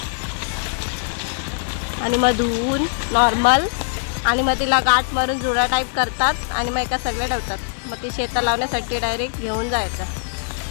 आणि मग धुवून नॉर्मल आणि मग तिला गाठ मारून जुडा टाईप करतात आणि मग एका सगळे ठेवतात. मग ती शेतात लावण्यासाठी डायरेक्ट घेऊन जायचं.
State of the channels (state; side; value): silent; right; digital silence